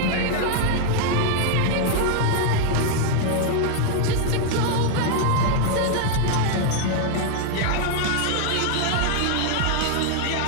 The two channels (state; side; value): different; both; correlation 0.00